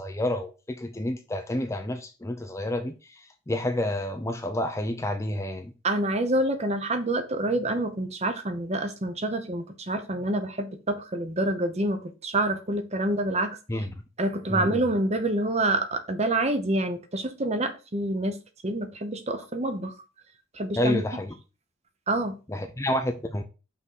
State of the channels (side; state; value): both; normal; correlation 0.38